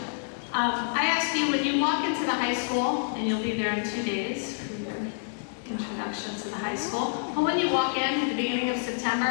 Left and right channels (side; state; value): right; silent; digital silence